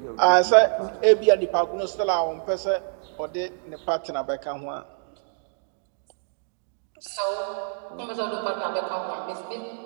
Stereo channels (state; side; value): silent; left; digital silence